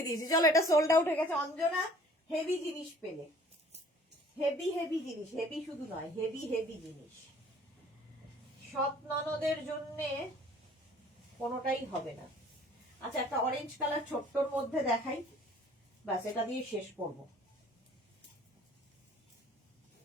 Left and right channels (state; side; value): normal; both; correlation 0.53